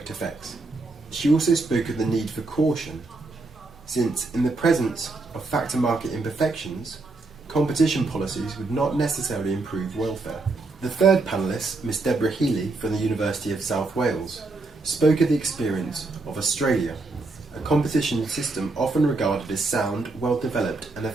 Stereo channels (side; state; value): left; quieter; 3.4 dB